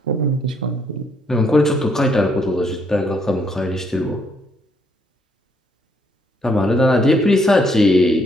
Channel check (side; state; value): both; normal; correlation 0.71